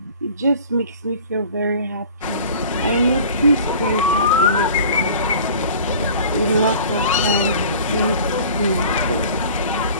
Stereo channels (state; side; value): inverted; both; correlation -0.45